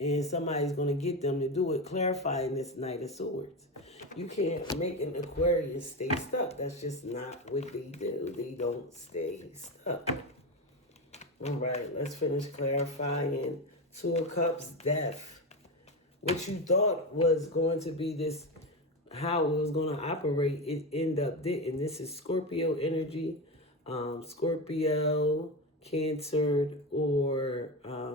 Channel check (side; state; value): both; normal; correlation 0.17